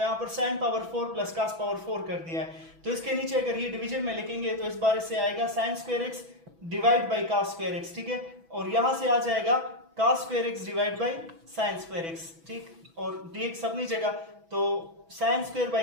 पर sine power 4 plus cos power 4 कर दिया है। तो इसके नीचे अगर ये डिवीजन में लिखेंगे तो इस बार इससे आएगा sine square x divide by cos square x, ठीक है, और यहाँ से आ जाएगा cos square x divide by sine square x, ठीक, और dx अपनी जगह, तो sine square by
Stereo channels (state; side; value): late; left; 6.1 ms